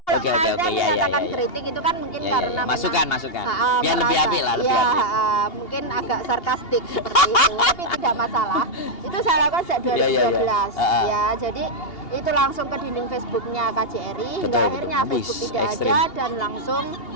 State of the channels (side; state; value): right; late; 2.8 ms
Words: Oke, ya, menyatakan ya. kritik itu kan mungkin Ya, karena memang, masukan. Biar lebih merasa, apik lah, lebih ya, apik. mungkin agak sarkastik seperti itu, tapi tidak masalah. Itu saya lakukan sejak 2012. Ya, jadi itu langsung ke dinding Facebooknya KJRI, hingga Betul, akhirnya betul. Facebook Wih, tidak ekstrim. ada dan langsung